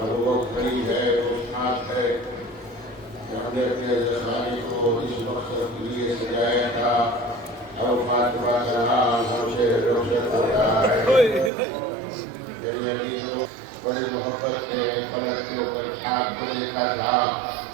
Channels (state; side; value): drops out; left; at 11.5 s